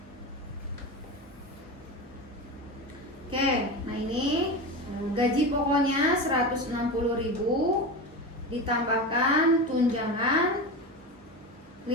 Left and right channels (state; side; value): normal; both; correlation 0.24